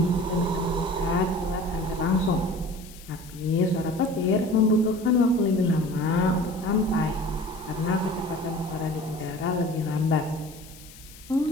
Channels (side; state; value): left; noise; hiss, 20 dB below the sound